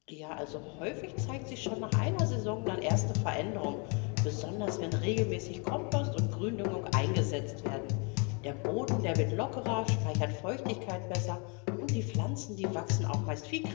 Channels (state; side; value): quieter; right; 34.1 dB